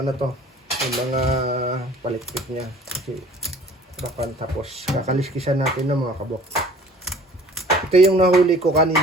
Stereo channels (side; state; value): both; normal; correlation 0.49